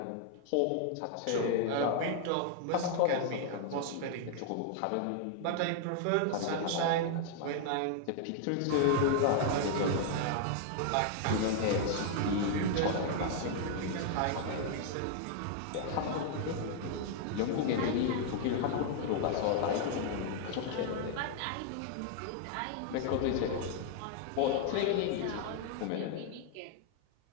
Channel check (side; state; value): both; different; correlation 0.00